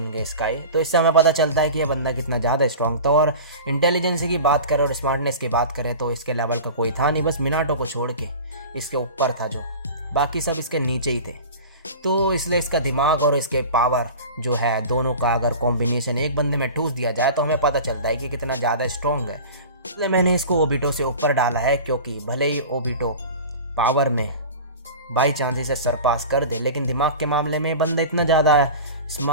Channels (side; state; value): both; inverted; correlation -0.35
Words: के इसका ही। तो इससे हमें पता चलता है कि ये बंदा कितना ज़्यादा स्ट्रांग था। और इंटेलिजेंस की बात करें और स्मार्टनेस की बात करें तो इसके लेवल का कोई था नहीं, बस मिनाटो को छोड़ के इसके ऊपर था, जो बाकी सब इसके नीचे ही थे। तो इसलिए इसका दिमाग और इसके पावर जो है दोनों का अगर कॉम्बिनेशन एक बंदे में ठूस दिया जाए तो हमें पता चलता है कि कितना ज़्यादा स्ट्रांग है। इसलिए मैंने इसको ओबिटो से ऊपर डाला है, क्योंकि भले ही ओबिटो पावर में बाई चांस इसे सरपास कर दे, लेकिन दिमाग के मामले में बंदा इतना ज़्यादा